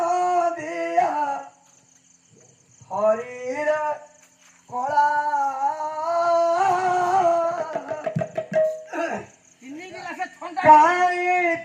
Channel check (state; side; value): identical; both; correlation 1.00